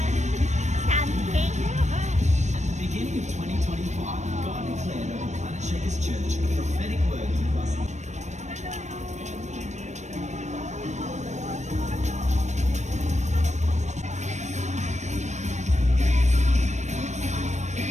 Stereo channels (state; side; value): late; left; 0.34 ms